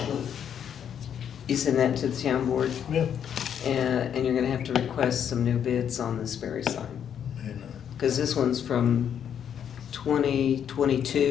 you send that to the town board, Yeah. and you're gonna have to request some new bids on the Sperry sign. And, Because this one's from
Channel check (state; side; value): quieter; right; 8.7 dB